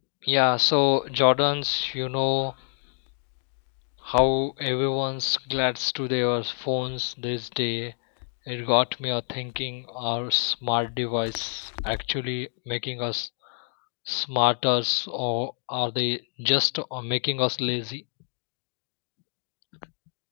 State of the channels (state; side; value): silent; right; digital silence